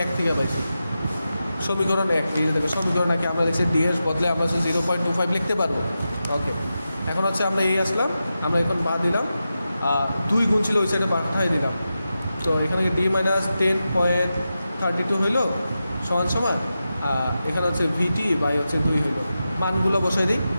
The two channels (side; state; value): both; inverted; correlation -0.91